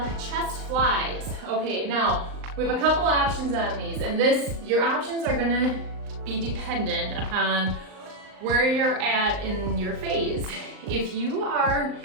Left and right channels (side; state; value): left; late; 39 ms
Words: chest flies. Okay, now we have a couple options on these, and your options are gonna be dependent upon where you're at in your phase. If you are